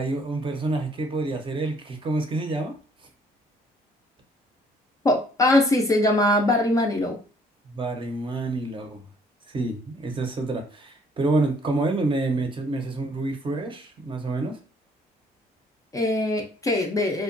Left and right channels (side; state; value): both; normal; correlation 0.62